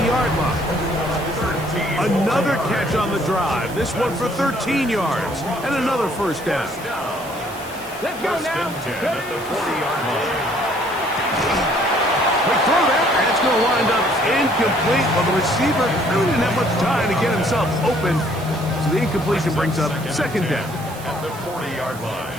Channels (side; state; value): right; noise; hiss, 18 dB below the sound